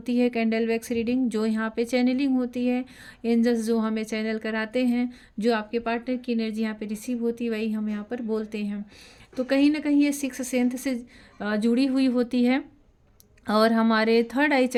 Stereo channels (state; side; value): identical; both; correlation 1.00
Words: है, कैंडल वैक्स रीडिंग, जो यहाँ पे चैनलिंग होती है। एंजल्स जो हमें चैनल कराते हैं, जो आपके पार्टनर की एनर्जी यहाँ पे रिसीव होती है, वही हम यहाँ पर बोलते हैं। तो कहीं ना कहीं ये सिक्स सेंथ से जुड़ी हुई होती है और हमारे थर्ड आई